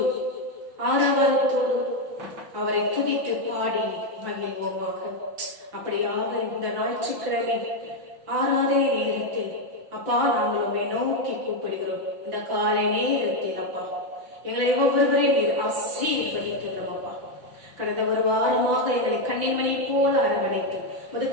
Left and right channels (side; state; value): left; late; 5.8 ms